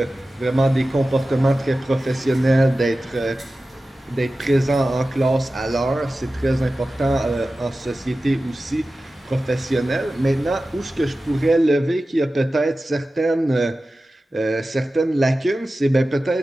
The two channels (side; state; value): both; normal; correlation 0.95